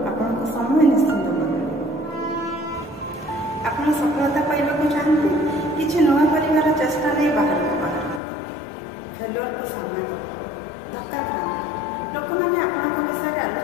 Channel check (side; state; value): right; drops out; at 8.2 s